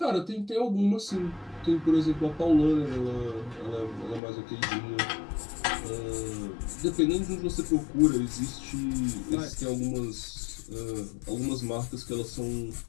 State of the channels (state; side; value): drops out; right; at 4.2 s